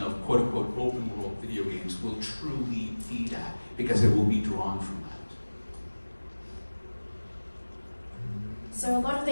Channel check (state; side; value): inverted; both; correlation -1.00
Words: of quote-unquote open world video games will truly be that, because it will be drawn from that. So a lot of